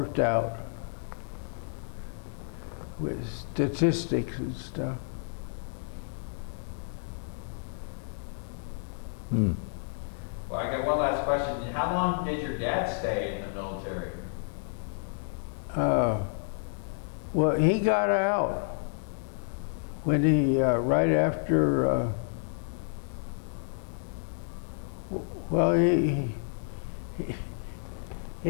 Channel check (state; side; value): silent; right; digital silence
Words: out with statistics and stuff. Well, I got one last question. How long did your dad stay in the military? Well, he got out when he, right after, well,